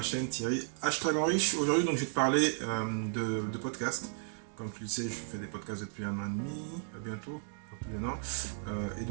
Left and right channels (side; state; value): left; silent; 55 dB below the other